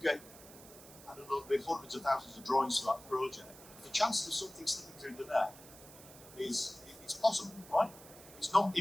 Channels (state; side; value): noise; right; hiss, 18 dB below the sound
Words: get, I don't know, maybe hundreds of thousands of drawings for that project, the chances of something slipping through the net it's possible, right? It's not